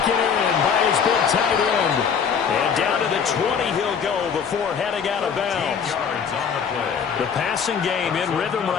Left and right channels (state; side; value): quieter; right; 6.8 dB